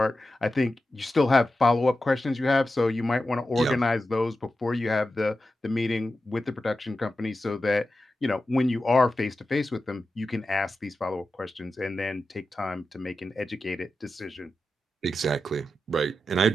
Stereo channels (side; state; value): both; normal; correlation 0.91